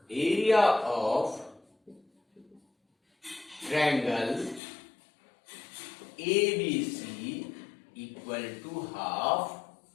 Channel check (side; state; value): right; drops out; at 4.6 s